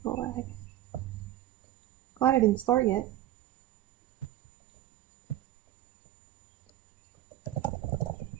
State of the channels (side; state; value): left; quieter; 13.9 dB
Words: for the lag. Glad I didn't start yet.